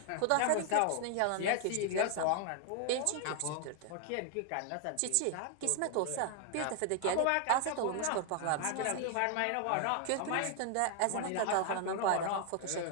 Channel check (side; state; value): both; different; correlation 0.00